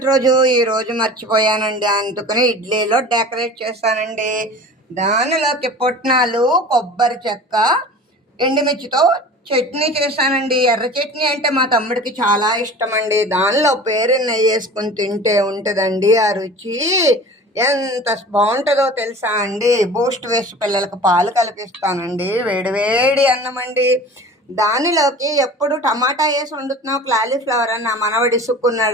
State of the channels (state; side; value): normal; both; correlation 0.39